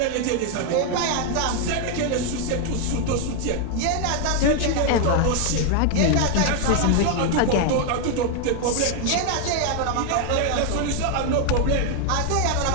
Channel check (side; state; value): both; different; correlation 0.00